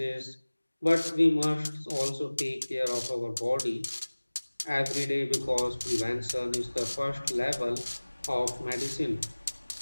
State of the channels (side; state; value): both; inverted; correlation -1.00